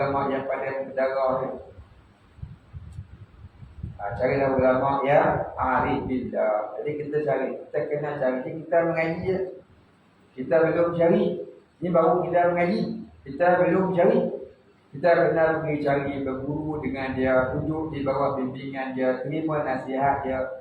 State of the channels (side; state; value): both; identical; correlation 1.00